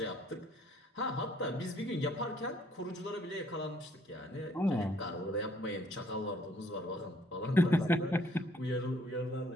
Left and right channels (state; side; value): normal; both; correlation 0.63